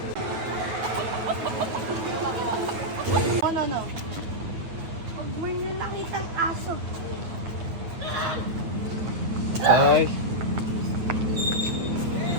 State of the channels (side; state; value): left; late; 9.1 ms